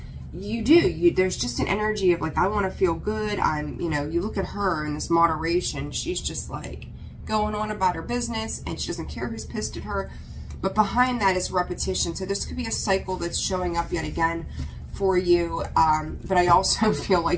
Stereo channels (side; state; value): both; identical; correlation 1.00